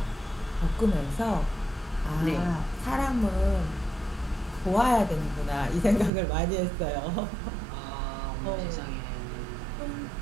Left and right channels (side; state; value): left; drops out; at 6.1 s